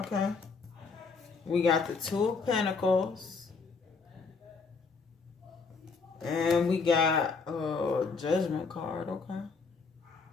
We got the Two of Pentacles. And we got a Judgment card, okay.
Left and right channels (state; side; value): quieter; right; 4.8 dB